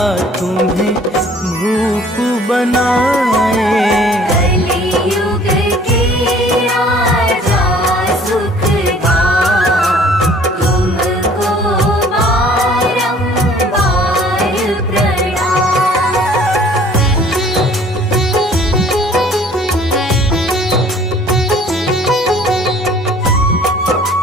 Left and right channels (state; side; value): normal; both; correlation 0.54